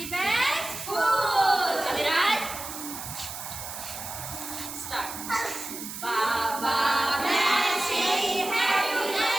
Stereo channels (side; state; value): right; noise; hiss, 9 dB below the sound